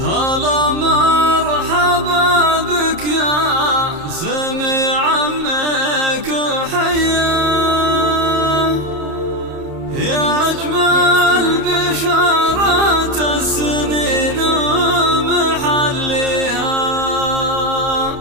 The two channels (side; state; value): left; late; 30 ms